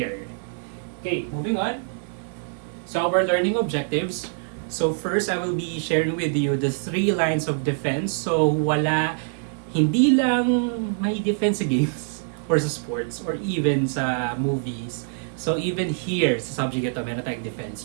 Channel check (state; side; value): silent; left; 57 dB below the other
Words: Okay, moving on. So our learning objectives. So first, I will be sharing with you the 3 lines of defense. So hindi lang may defense sa games or sa sports or even sa movies. So even here sa subject ito, meron tayong defense.